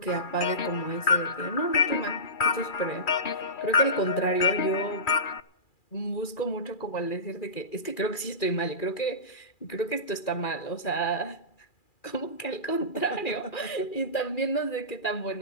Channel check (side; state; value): right; late; 2.4 ms